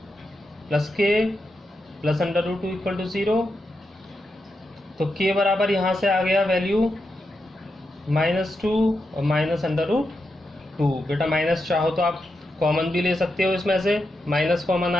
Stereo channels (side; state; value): both; normal; correlation 0.86